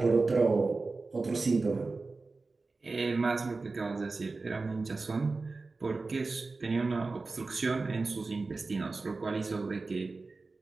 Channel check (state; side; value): quieter; left; 3.8 dB